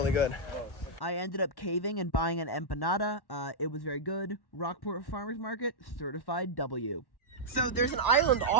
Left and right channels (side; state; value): right; late; 1.0 ms